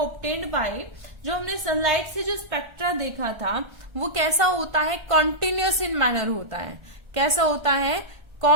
by, जो हमने सनलाइट से जो स्पेक्ट्रा देखा था वो कैसा होता है, कॉन्टिन्यूअस इन मैनर होता है। कैसा होता है,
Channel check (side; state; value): left; late; 1.5 ms